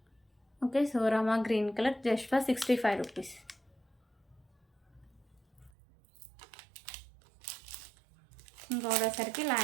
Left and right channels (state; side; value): drops out; left; at 5.7 s